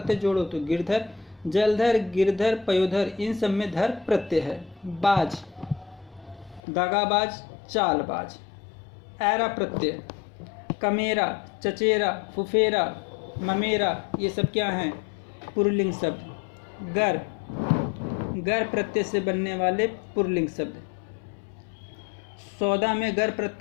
जोड़ो तो गिरधर। जलधर, गिरधर, पयोधर, इन सब में धर प्रत्यय है। बाज, दागाबाज, चालबाज। ऐरा प्रत्यय। कमेरा, चचेरा, फुफेरा, ममेरा, ये सब क्या हैं? पुल्लिंग शब्द। गर, गर प्रत्यय से बनने वाले पुल्लिंग शब्द। सौदा में गर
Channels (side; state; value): right; drops out; at 6.6 s